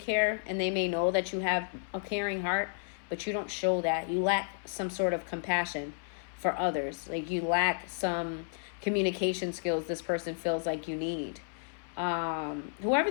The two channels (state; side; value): silent; right; 56 dB below the other